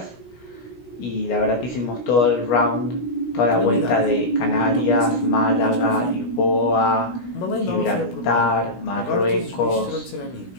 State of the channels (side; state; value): right; late; 16 ms